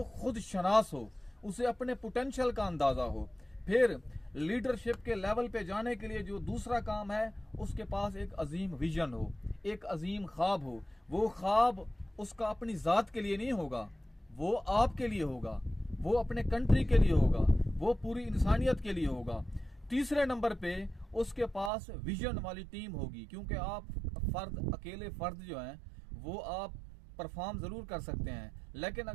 खुद शनास हो, उसे अपने पोटेंशियल का अंदाजा हो। फिर लीडरशिप के लेवल पे जाने के लिए जो दूसरा काम है, उसके पास एक अजीम विजन हो, एक अजीम ख्वाब हो। वो ख्वाब उसका अपनी जात के लिए नहीं होगा, वो आपके लिए होगा, वो अपने कंट्री के लिए होगा, वो पूरी इंसानियत के लिए होगा। तीसरे नंबर पे उसके पास विजन वाली टीम होगी, क्योंकि आप अकेले फर्द जो हैं वो आप परफॉर्म जरूर कर सकते हैं, लेकिन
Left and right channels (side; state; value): left; drops out; at 21.7 s